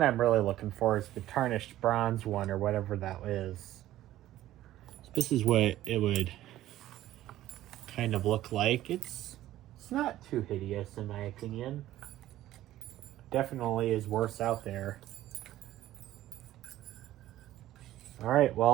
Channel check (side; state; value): left; quieter; 14.2 dB